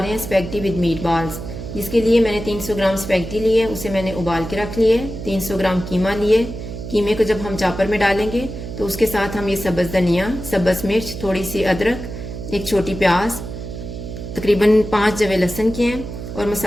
हैं स्पैगेटी विद मीट बॉल्स। इसके लिए मैंने 300 ग्राम स्पैगेटी लिए, उसे मैंने उबाल के रख लिए। 300 ग्राम कीमा लिए। कीमे को जब हम चापर में डालेंगे तो उसके साथ हम ये सब्ज़ धनिया, सब्ज़ मिर्च, थोड़ी सी अदरक, एक छोटी प्याज, तकरीबन 5 जवे लहसुन के हैं। और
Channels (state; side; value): noise; right; hum, 9 dB below the sound